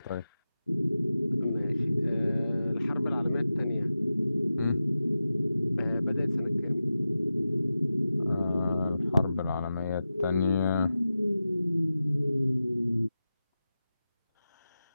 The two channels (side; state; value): both; inverted; correlation -0.93